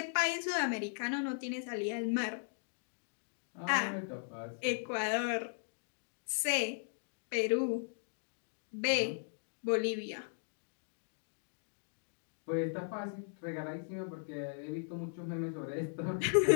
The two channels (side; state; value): right; silent; digital silence